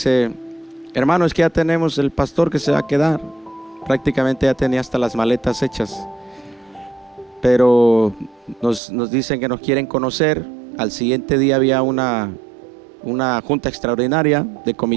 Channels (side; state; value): left; drops out; at 8.8 s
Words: hermano, es que ya tenemos el pastor que se va a quedar. Prácticamente ya tenía hasta las maletas hechas. Pero nos dicen que nos quieren conocer. Al siguiente día había una junta extraordinaria de